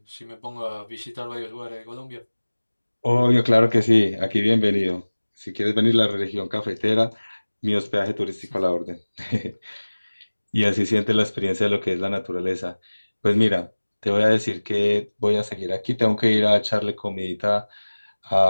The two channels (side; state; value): both; inverted; correlation -1.00